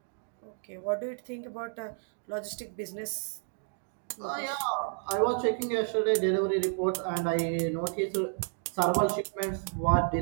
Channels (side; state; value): left; silent; 57 dB below the other